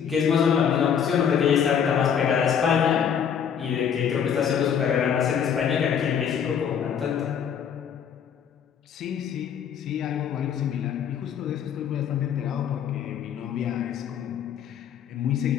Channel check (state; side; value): quieter; right; 8.0 dB